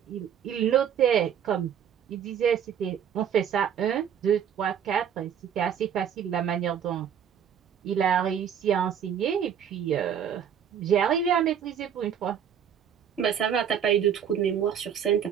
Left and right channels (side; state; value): left; quieter; 8.5 dB